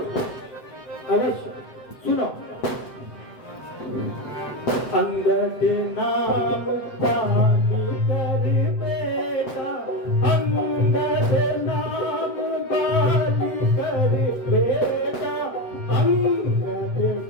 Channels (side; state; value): right; late; 8.0 ms